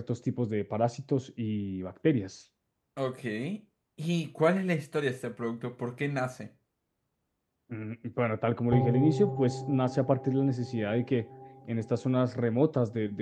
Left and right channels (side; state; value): both; identical; correlation 1.00